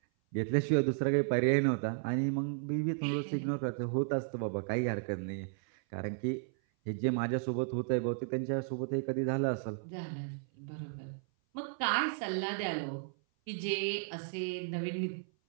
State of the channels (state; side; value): silent; left; 55 dB below the other